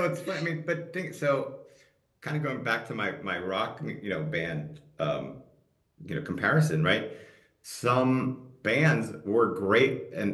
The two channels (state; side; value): identical; both; correlation 1.00